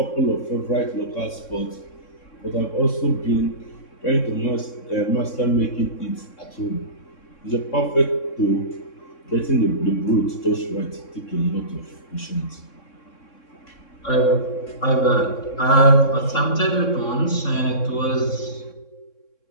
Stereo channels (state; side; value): late; right; 3.6 ms